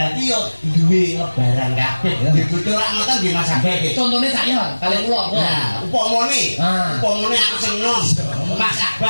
yo duwe lebaran kabeh. Dibutuh rak ngoten nggih Mas Abeh. Contone saya kali kula. Nah, upamane, Ah. upamane aku seneng. Mas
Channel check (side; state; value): both; inverted; correlation -1.00